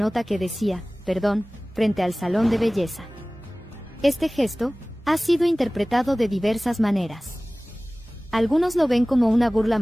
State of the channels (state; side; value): normal; both; correlation 0.98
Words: que decía, "Perdón", frente al salón de belleza. Este gesto ha sido interpretado de diversas maneras. Algunos lo ven como una burla